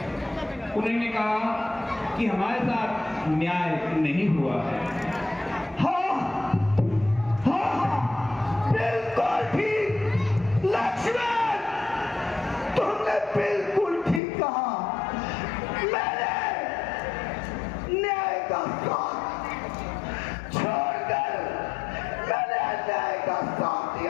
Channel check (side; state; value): right; drops out; at 14.2 s